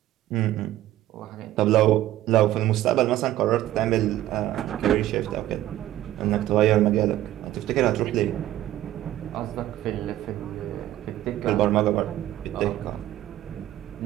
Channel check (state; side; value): quieter; left; 14.1 dB